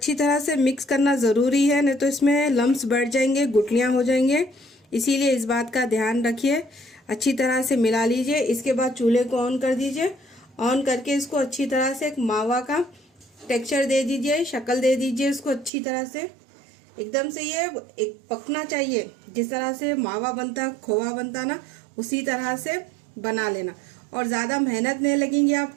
तरह से मिक्स करना ज़रूरी है, नहीं तो इसमें लम्स बैठ जाएंगे, गुठलियाँ हो जाएंगे। इसीलिए इस बात का ध्यान रखिए। अच्छी तरह से मिला लीजिए। इसके बाद चूल्हे को ऑन कर दीजिए। ऑन करके इसको अच्छी तरह से एक मावा का टेक्सचर दे दीजिए, शक्ल दे दीजिए इसको अच्छी तरह से। एकदम से ये एक पकना चाहिए, जिस तरह से मावा बनता, खोवा बनता ना, उसी तरह से बना लेना। और ज़्यादा मेहनत नहीं लगेंगी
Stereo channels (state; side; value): drops out; left; at 15.7 s